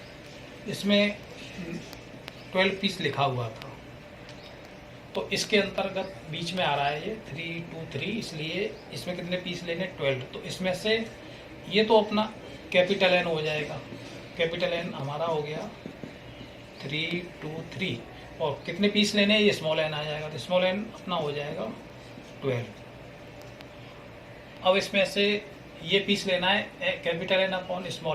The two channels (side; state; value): both; identical; correlation 1.00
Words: इसमें 12 पीस लिखा हुआ था, तो इसके अंतर्गत बीच में आ रहा है ये 323, इसलिए इसमें कितने पीस लेने 12। तो इसमें से ये तो अपना कैपिटल N हो जाएगा, कैपिटल N हमारा हो गया 323 और कितने पीस लेने ये स्मॉल n आ जाएगा, तो स्मॉल n अपना हो जाएगा 12। अब इसमें से ये पीस लेना है capital N upon